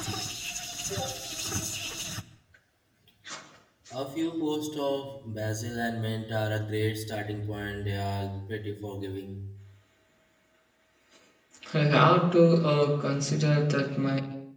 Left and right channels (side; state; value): both; identical; correlation 1.00